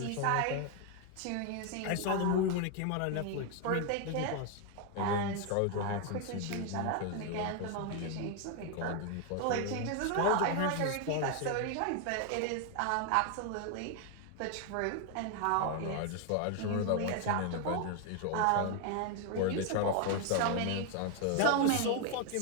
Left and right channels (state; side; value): different; both; correlation 0.01